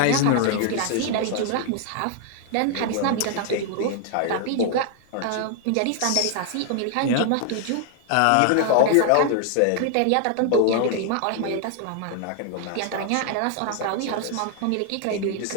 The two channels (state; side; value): different; both; correlation 0.00